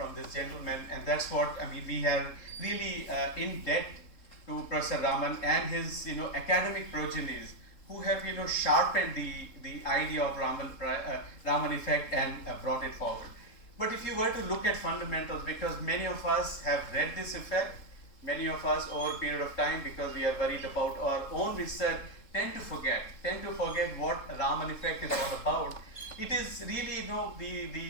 this gentleman, and that's what I mean. We have really in debt to Professor Raman and his academic progenies who have sharpened the idea of Raman effect and brought it forward. But if you were to look at fundamentals, because many of us have read this effect, many of us over a period of time, because we are worried about our own research, tend to forget what Raman effect is all about. It is really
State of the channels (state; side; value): late; right; 3.7 ms